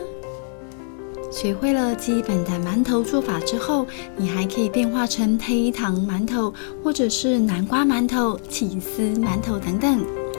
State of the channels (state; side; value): silent; right; digital silence